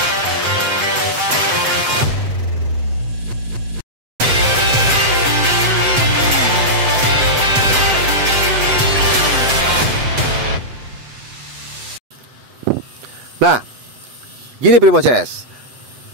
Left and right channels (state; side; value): late; left; 7.8 ms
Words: Nah, gini Primo CS,